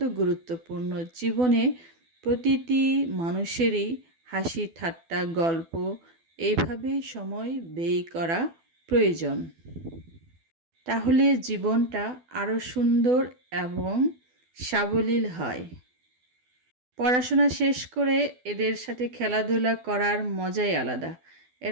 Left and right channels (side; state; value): left; late; 12 ms